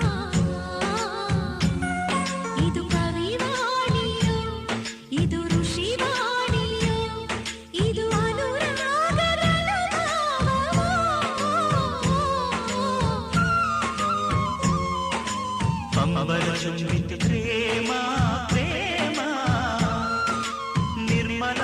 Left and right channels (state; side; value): identical; both; correlation 1.00